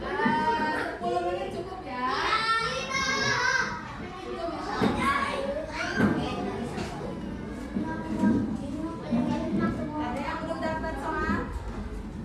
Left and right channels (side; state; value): both; identical; correlation 1.00